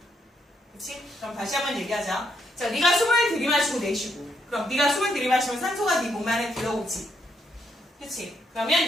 그치? 그럼 다시 한번 얘기하자. 자, 네가 숨을 들이마시고 내쉬고. 그럼 네가 숨을 들이마시면 산소가 네 몸 안에 들어오지. 그치? 그러면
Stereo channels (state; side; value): normal; both; correlation 0.76